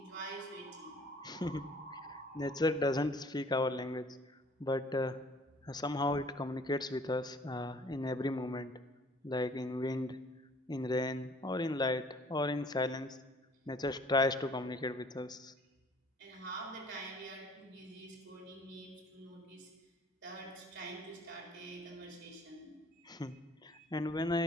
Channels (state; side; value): normal; both; correlation 0.55